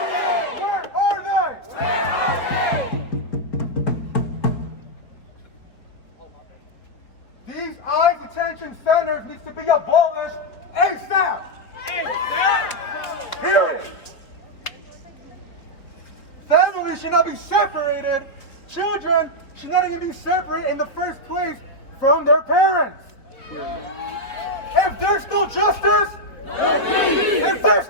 Where are they? These ICE detention centers need to be abolished ASAP. Period. Families should not be separated. Children should not even be separated in the first place from their parents. If there's no justice, if there's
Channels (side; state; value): right; late; 4.3 ms